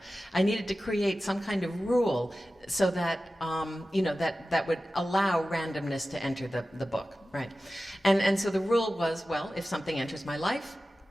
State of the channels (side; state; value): both; normal; correlation 0.95